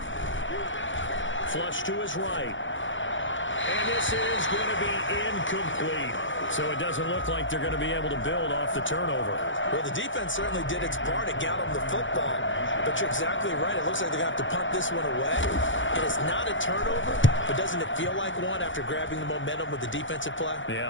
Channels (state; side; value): late; right; 0.56 ms